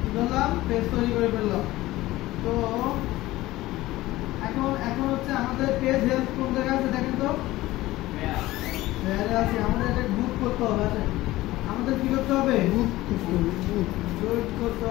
কি করলাম? পেজ তৈরি করে ফেললাম। তো এখন হচ্ছে আমাদের পেজ হেলথ কোন জায়গায় আছে দেখেন তো। আছে। আমাদের এটা গ্রুপ করতে হবে। আছে আমাদের কি করতে হবে? গ্রুপ করতে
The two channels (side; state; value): right; quieter; 17.4 dB